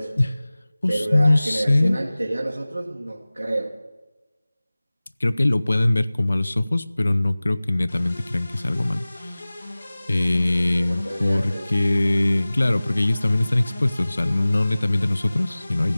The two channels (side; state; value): both; inverted; correlation -0.99